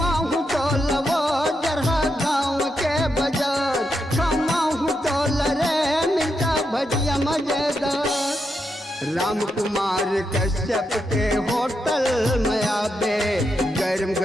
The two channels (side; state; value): both; normal; correlation 0.84